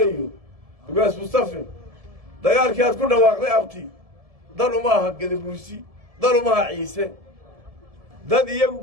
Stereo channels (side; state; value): left; late; 1.7 ms